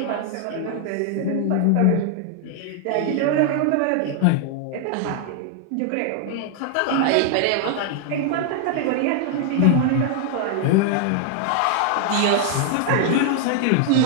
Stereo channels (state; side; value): different; both; correlation 0.00